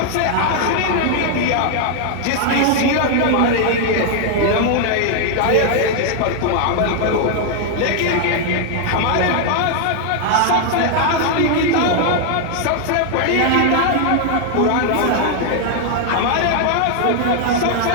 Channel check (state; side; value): different; both; correlation 0.00